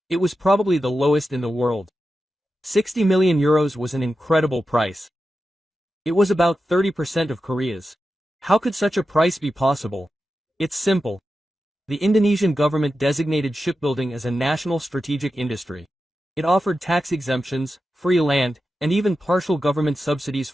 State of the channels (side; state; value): both; normal; correlation 0.91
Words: it was probably the lowest in the world. 60 million euros was an incredible price. It was about 30% of Korea's. How could such a price be possible? It's simple. The Indonesian government designated shipbuilding as a national strategic industry. It offered tax exemptions, free land, and even partial government subsidies